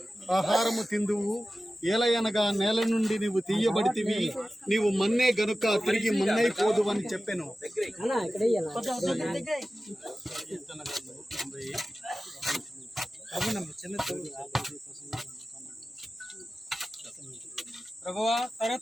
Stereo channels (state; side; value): normal; both; correlation 0.95